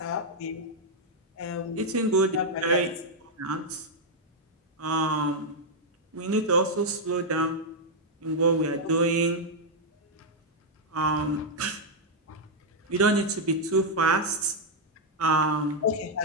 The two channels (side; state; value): both; normal; correlation -0.02